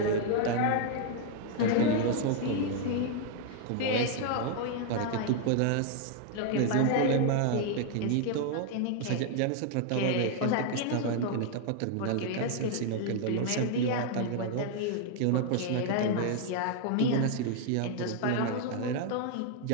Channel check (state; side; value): different; both; correlation 0.00